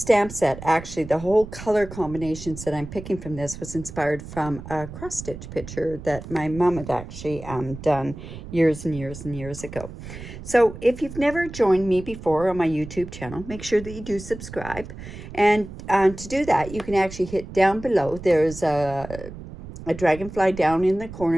set, actually the whole color combinations that I'm picking from this was inspired from a cross stitch picture that my mom had actually done years and years and years ago. So if you've never joined me before on my YouTube channel, make sure that you do subscribe, and to do that you can actually hit down below. There's a dragonfly down in the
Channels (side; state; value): right; noise; rumble, 12 dB below the sound